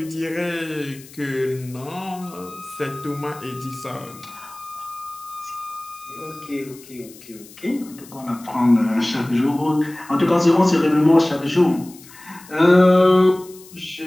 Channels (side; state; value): left; noise; hiss, 21 dB below the sound